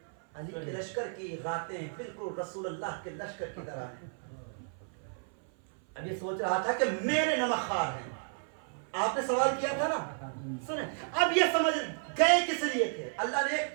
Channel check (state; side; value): silent; left; 56 dB below the other